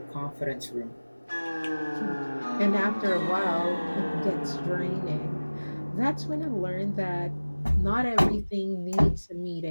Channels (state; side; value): inverted; both; correlation -1.00